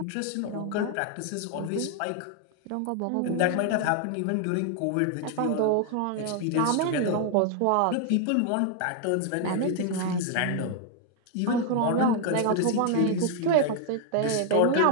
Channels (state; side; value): different; both; correlation 0.00